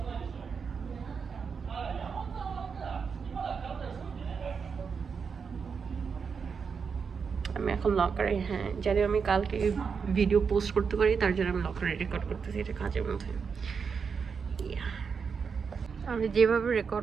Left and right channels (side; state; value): left; quieter; 5.9 dB